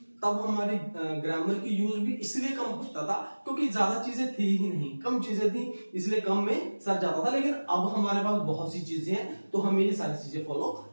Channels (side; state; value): both; inverted; correlation -1.00